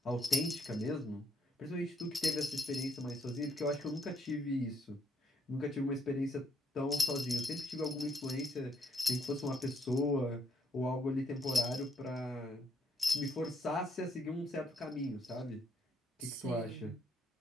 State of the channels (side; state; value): both; normal; correlation 0.72